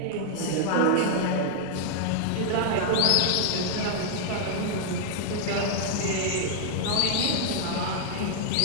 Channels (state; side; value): different; both; correlation -0.01